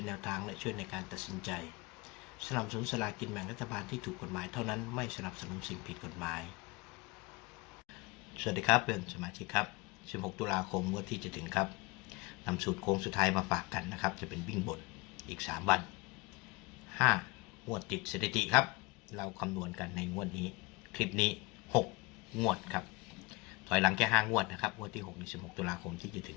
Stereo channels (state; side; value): quieter; right; 24.4 dB